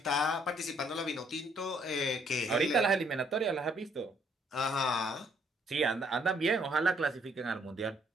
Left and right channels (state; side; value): normal; both; correlation 0.67